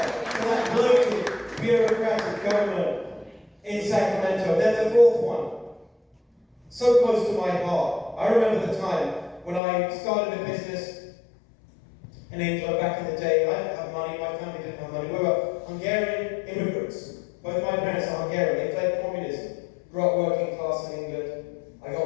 to that bloated, bureaucratic government in Sacramento. Then the fourth one. So close to my heart. I remember the time when I started a business in England back in the day. I didn't have money, my family didn't have money. We were Hungarian immigrants. Both my parents are Hungarian. They fled communism. Grew up working class in England. I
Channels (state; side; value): drops out; right; at 9.6 s